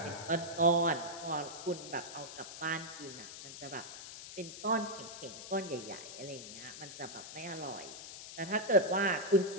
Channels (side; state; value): left; noise; hiss, 11 dB below the sound